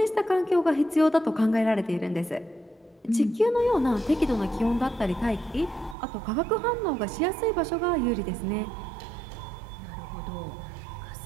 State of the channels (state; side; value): drops out; left; at 6.0 s